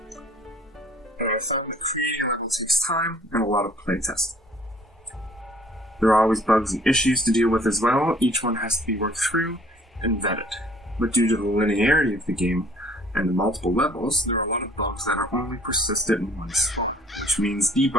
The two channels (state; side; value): normal; both; correlation 0.55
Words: Creating level takes time and a lot of playtesting. There are always bugs and issues to deal with as well. Each one has to be worked through and vetted. But due to the linearity of the game and the multiple levels, there are a lot of bugs that are only persistent once, which means